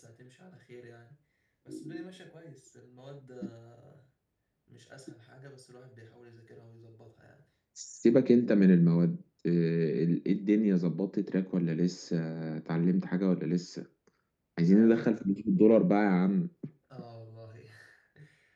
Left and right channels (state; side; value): identical; both; correlation 1.00